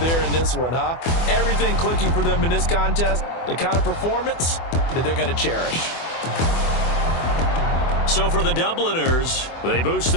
in this one, huh? Everything clicking for them in this contest, the kind of performance that they're going to cherish. So for the Dubliners, they boost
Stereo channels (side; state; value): right; late; 24 ms